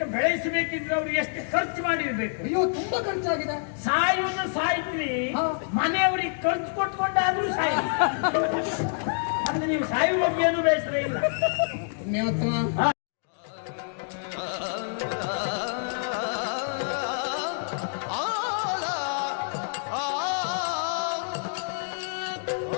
ಬೆಳೆಸಬೇಕಿದ್ರೆ ಅವ್ರು ಎಷ್ಟು ಖರ್ಚು ಮಾಡಿರ್ಬೇಕು? ಅಯ್ಯೋ, ತುಂಬಾ ಖರ್ಚಾಗಿದೆ. ಸಾಯುವನ್ನು ಸಾಯ್ತ್ರಿ, ಮನೆಯವ್ರಿಗೆ ಖರ್ಚು ಕೊಟ್ಕೊಂಡಾದ್ರೂ ಸಾಯಿ. ಅಂದ್ರೆ ನೀವು ಸಾಯುವ ಬಗ್ಗೆ ಏನು ಬೇಸರ ಇಲ್ಲ.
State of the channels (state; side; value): silent; right; digital silence